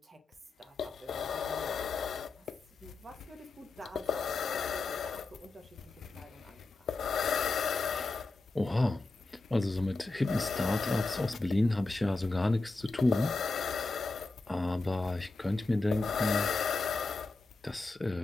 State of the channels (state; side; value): quieter; right; 3.4 dB